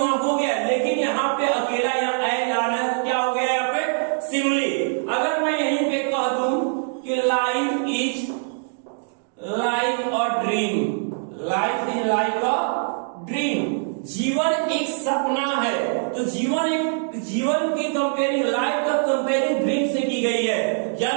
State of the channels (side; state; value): left; silent; digital silence